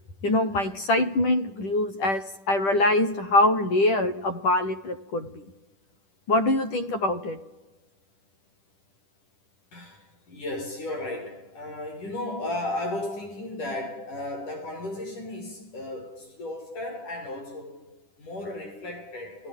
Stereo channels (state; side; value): late; right; 10 ms